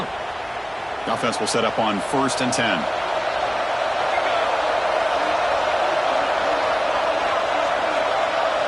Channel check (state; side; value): identical; both; correlation 1.00